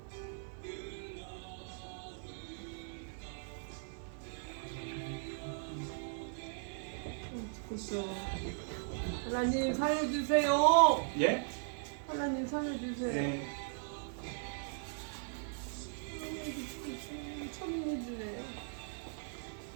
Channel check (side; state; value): left; silent; 52 dB below the other